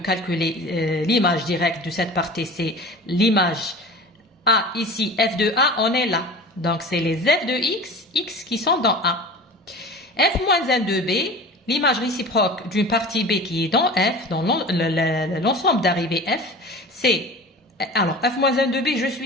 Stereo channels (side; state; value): both; normal; correlation 0.36